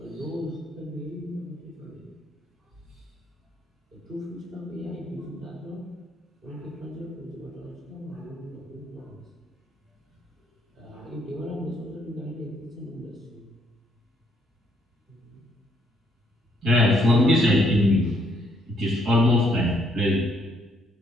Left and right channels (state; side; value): normal; both; correlation 0.70